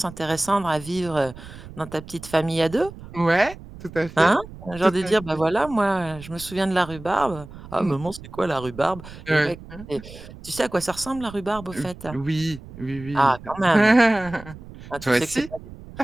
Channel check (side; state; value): right; noise; rumble, 16 dB below the sound